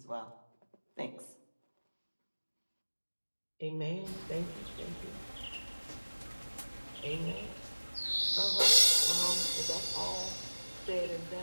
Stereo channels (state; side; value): inverted; both; correlation -1.00